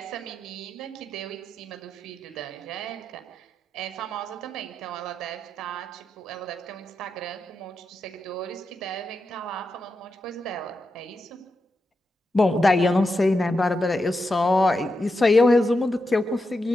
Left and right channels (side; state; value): both; normal; correlation 0.87